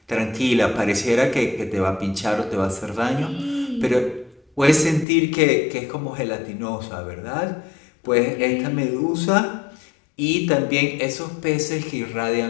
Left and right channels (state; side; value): drops out; right; at 5.1 s